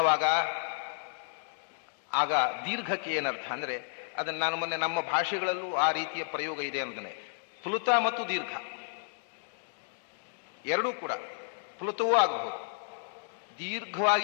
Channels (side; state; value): right; silent; digital silence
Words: ಆಗ ದೀರ್ಘಕ್ಕೆ ಏನರ್ಥ ಅಂದ್ರೆ, ಅದನ್ನು ನಾನು ಮೊನ್ನೆ ನಮ್ಮ ಭಾಷೆಗಳಲ್ಲೂ ಆ ರೀತಿಯ ಪ್ರಯೋಗ ಇದೆ ಅನ್ನೋದನ್ನೇ. ಪ್ಲುತ ಮತ್ತು ದೀರ್ಘ ಎರಡೂ ಕೂಡ ಪ್ಲುತವೂ ಆಗಬಹುದು.